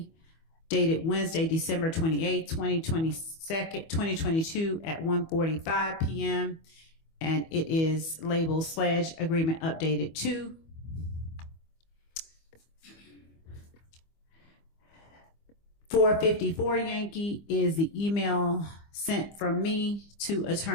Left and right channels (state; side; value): late; right; 25 ms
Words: dated Wednesday, December 28, 2022 at 1:45 p.m. And it is labeled Sledge Agreement Updated 2. .454 Yankee is the email sent from me to